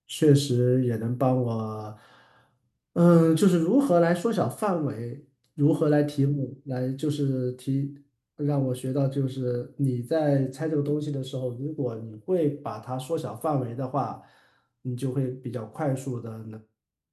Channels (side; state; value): both; identical; correlation 1.00